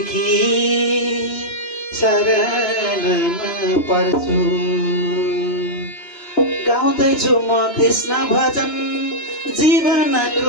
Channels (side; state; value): right; late; 2.9 ms